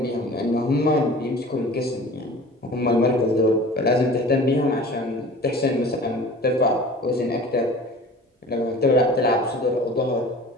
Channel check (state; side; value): normal; both; correlation 0.42